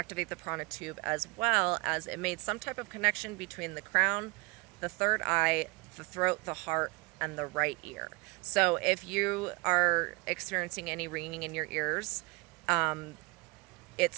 the prana tube, as well as it made some type of connection between the crown, the third eye, the throat, the heart, and the right ear. So if you are experiencing any ringing in your ears,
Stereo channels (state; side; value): quieter; left; 26.8 dB